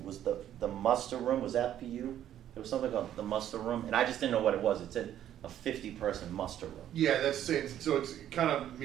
was the muster room. Was that for you? There was something about the muster room, and I just didn't know what it was. It said a 50-person muster room. Yeah, that's same, so it's kind of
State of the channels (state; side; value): quieter; left; 11.2 dB